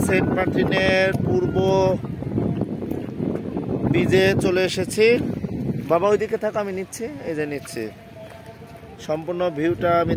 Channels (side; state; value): both; identical; correlation 1.00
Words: সেন্ট মার্টিনের পূর্ব বিচে চলে এসেছি। বাবা ওইদিকে থাকো, আমি নিচ্ছি, এই যে নিচ্ছি। সম্পূর্ণ ভিউটা আমি